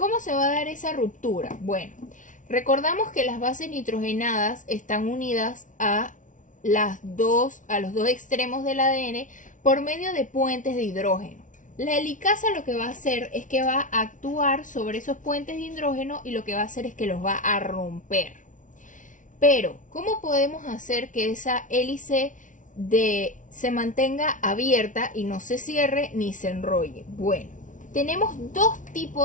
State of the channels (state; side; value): late; right; 0.37 ms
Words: se va a dar esa ruptura? Bueno, recordamos que las bases nitrogenadas están unidas a los dos extremos del ADN por medio de puentes de hidrógeno. La helicasa lo que va a hacer es que va a actuar sobre esos puentes de hidrógeno y lo que va a hacer es que los va a romper. Pero, ¿cómo podemos hacer que esa hélice se mantenga abierta y no se cierre ni se enrolle? Bueno, tenemos dos